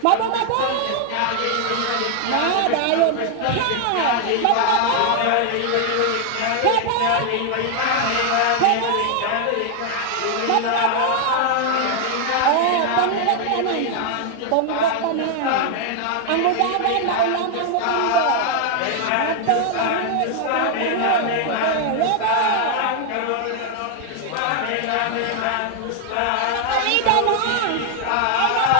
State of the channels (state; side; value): different; both; correlation 0.00